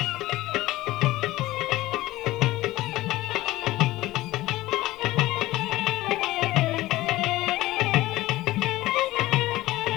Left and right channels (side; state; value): right; quieter; 17.4 dB